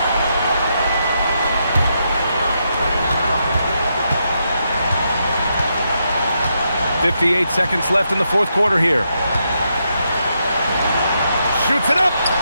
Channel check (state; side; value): inverted; both; correlation -0.81